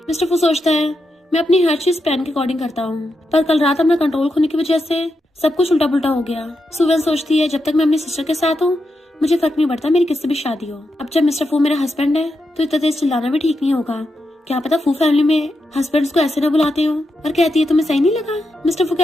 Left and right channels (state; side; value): normal; both; correlation 0.85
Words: मिस्टर फू सोचता है मैं अपनी हर चीज प्लान के अकॉर्डिंग करता हूँ, पर कल रात अपना कंट्रोल खोने की वजह से सब कुछ उल्टा पुल्टा हो गया। सुवन सोचती है जब तक मैं अपनी सिस्टर के साथ हूँ मुझे फर्क नहीं पड़ता मेरी किससे भी शादी हो। अब जब मिस्टर फू मेरा हस्बैंड है तो इतना तेज चिल्लाना भी ठीक नहीं होगा, क्या पता फू फैमिली में हस्बैंड्स को ऐसे ना बुलाते हो। और कहती है तुम्हें सही नहीं लगा? मिस्टर फू